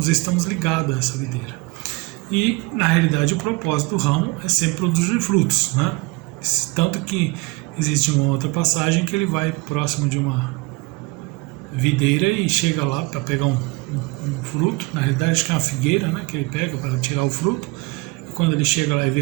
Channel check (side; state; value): left; quieter; 24.8 dB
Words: estamos ligados a essa videira. E, na realidade, o propósito do ramo é sempre produzir frutos, né? Tanto que existe uma outra passagem que ele vai próximo de uma videira e chega lá para pegar um fruto. Na realidade, acho que é uma figueira, né, que ele pega para tirar o fruto. E quando ele chega lá e